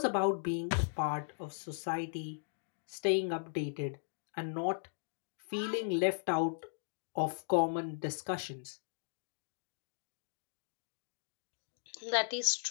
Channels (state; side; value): silent; right; digital silence